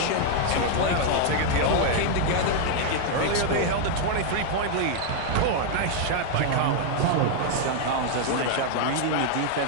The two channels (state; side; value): different; both; correlation 0.00